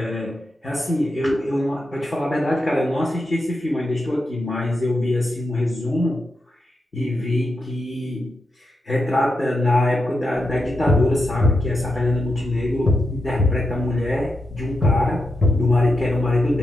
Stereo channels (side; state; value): both; normal; correlation 0.86